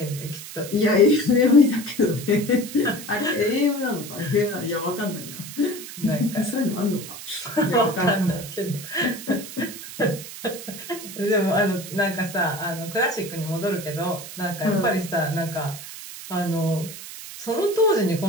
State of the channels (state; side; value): noise; right; hiss, 12 dB below the sound